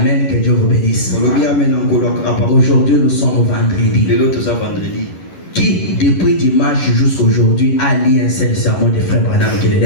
que Dieu vous bénisse. Aujourd'hui, nous sommes vendredi. Qui, depuis dimanche jusqu'à aujourd'hui, a lu un seul sermon de frère Branham qui le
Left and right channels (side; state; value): right; late; 11 ms